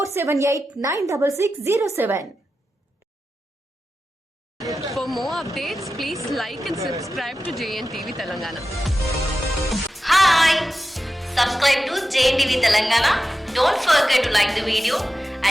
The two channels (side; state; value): both; normal; correlation 0.92